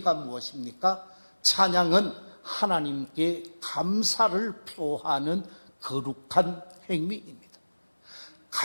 무엇입니까? 찬양은 하나님께 감사를 표하는 거룩한 행위입니다.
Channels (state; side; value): inverted; both; correlation -1.00